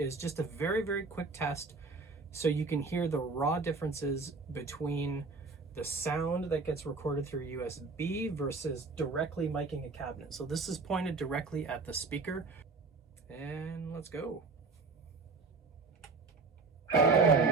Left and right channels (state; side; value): quieter; left; 4.1 dB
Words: just a very, very quick test so you can hear the raw differences between the sound that gets recorded through USB versus directly miking a cabinet. So this is pointed directly at the speaker, and let's go.